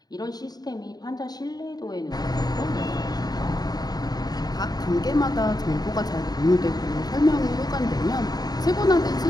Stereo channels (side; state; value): right; late; 0.19 ms